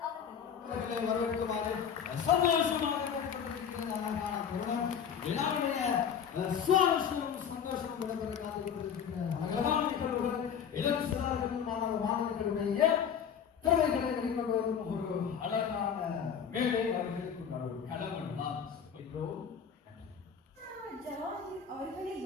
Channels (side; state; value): right; quieter; 7.7 dB